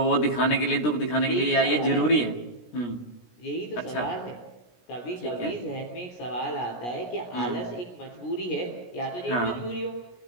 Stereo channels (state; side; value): late; right; 17 ms